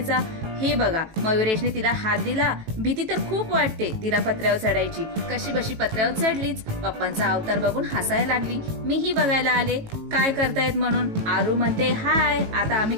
हे बघा, मयुरेशने तिला हात दिला। भीती तर खूप वाटते तिला पत्र्यावर चढायची। कशी बशी पत्र्यावर चढलीच। पप्पांचा अवतार बघून हसायला लागली। मीही बघायला आले काय करतायत म्हणून। आरू म्हणते, हाय, आता आम्ही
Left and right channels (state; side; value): late; left; 18 ms